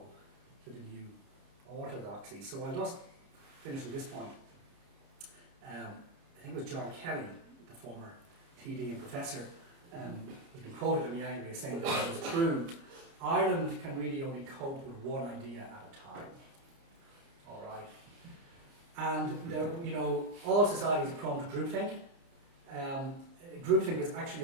to the new orthodoxy. So I'll just finish at this point. I think it was John Kelly, the former TD and professor, who's been quoted to me anyway, saying that it was true. Ireland can really only cope with one idea at a time. All right. And you know, all societies are prone to groupthink. Groupthink was actually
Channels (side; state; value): left; late; 30 ms